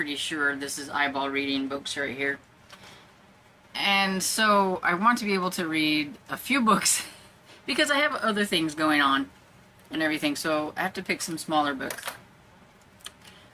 sure this is eyeball reading books right here. And so I want to be able to read a few books because I have other things going on and everything, so I have to pick some smaller books.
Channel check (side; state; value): both; identical; correlation 1.00